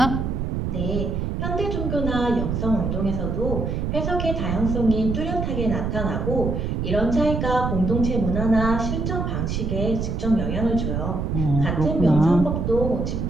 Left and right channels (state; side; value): noise; right; rumble, 1 dB below the sound